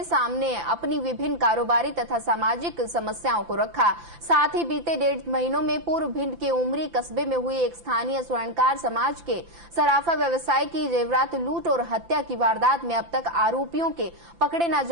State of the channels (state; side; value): late; left; 5.9 ms